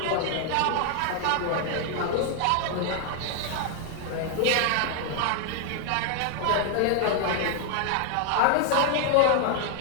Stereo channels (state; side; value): different; both; correlation 0.00